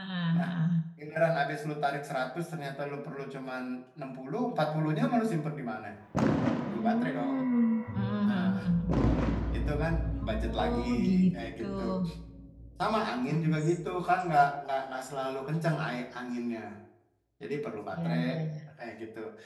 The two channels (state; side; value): identical; both; correlation 1.00